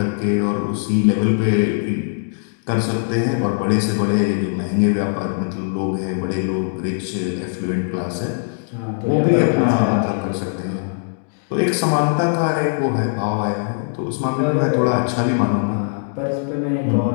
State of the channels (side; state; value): right; silent; digital silence